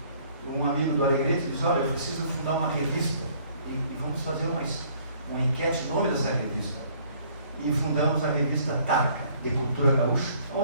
Um amigo do Alegrete disse: olha, eu preciso fundar uma revista e vamos fazer uma enquete, nome dessa revista. E fundamos a revista Tarca, de Cultura Gaúcha,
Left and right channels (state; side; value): inverted; both; correlation -0.60